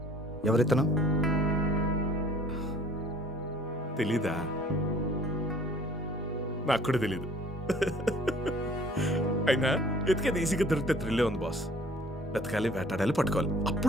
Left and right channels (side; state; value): both; normal; correlation 0.54